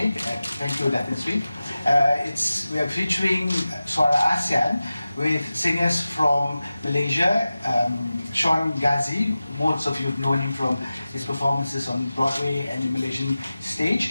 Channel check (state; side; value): inverted; both; correlation -0.95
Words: Thank you, Datin Sri. We are featuring Suara ASEAN with singers from Malaysia, Sean Ghazi. Most of you have known him from his performances on Broadway and the Malaysian